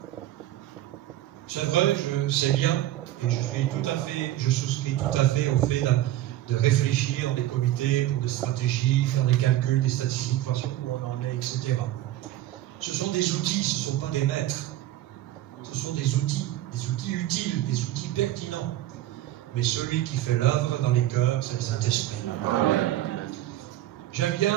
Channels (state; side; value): quieter; left; 14.1 dB